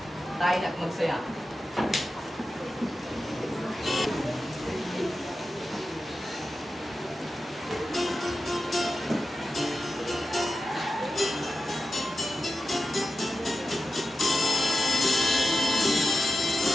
Tayo na't magsaya.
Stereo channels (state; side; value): normal; both; correlation 0.91